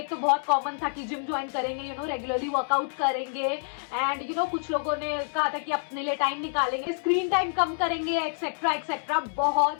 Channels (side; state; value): right; silent; 60 dB below the other